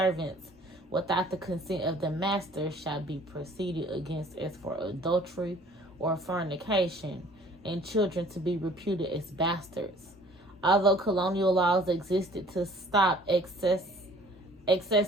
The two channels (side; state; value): both; normal; correlation 0.53